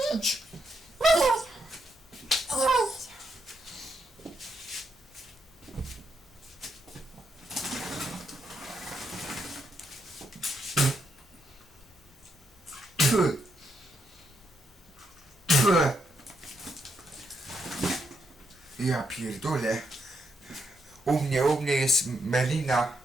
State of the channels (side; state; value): both; normal; correlation 0.79